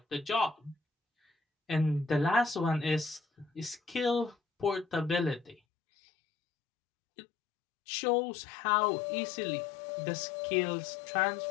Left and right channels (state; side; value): drops out; right; at 5.6 s